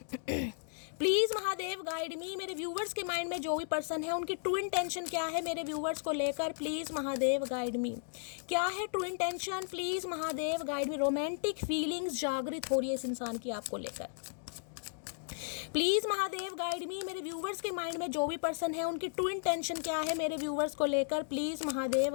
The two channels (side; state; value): right; silent; digital silence